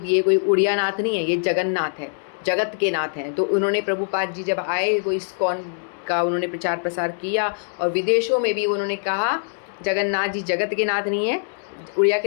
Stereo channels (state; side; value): silent; right; digital silence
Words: ये कोई उड़िया नाथ नहीं है, ये जगन्नाथ है, जगत के नाथ हैं। तो उन्होंने प्रभुपाद जी जब आए वो इस्कॉन का उन्होंने प्रचार प्रसार किया, और विदेशों में भी उन्होंने कहा जगन्नाथ जी जगत के नाथ नहीं है, उड़िया